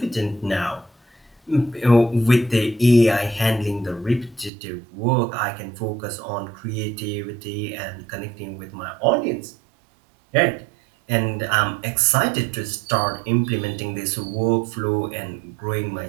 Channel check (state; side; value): drops out; left; at 4.5 s